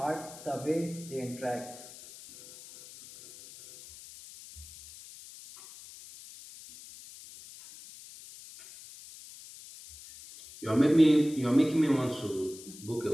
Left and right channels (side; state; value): left; noise; hiss, 18 dB below the sound